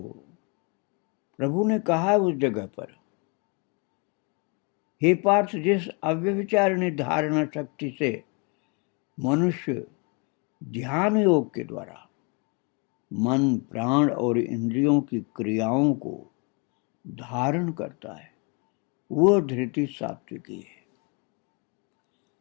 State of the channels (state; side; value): quieter; right; 32.2 dB